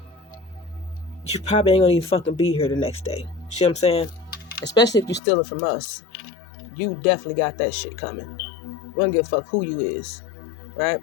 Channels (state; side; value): drops out; right; at 5.2 s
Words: you probably ain't gonna even fucking be here the next day. See what I'm saying? Especially if you're stealing from us. You definitely got that shit coming. We don't give a fuck who you is, right?